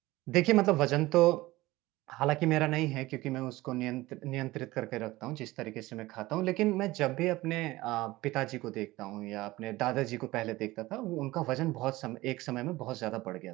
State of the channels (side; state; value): left; quieter; 18.8 dB